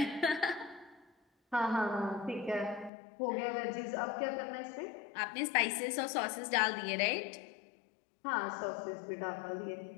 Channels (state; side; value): drops out; right; at 2.9 s